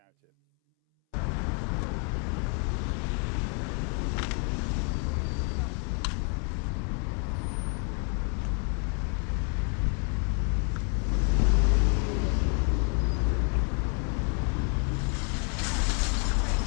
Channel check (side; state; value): right; quieter; 39.6 dB